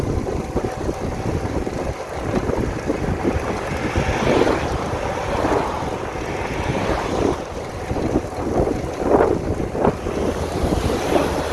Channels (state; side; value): identical; both; correlation 1.00